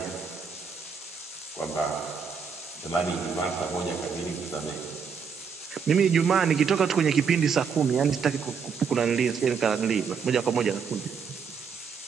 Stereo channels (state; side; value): quieter; left; 6.2 dB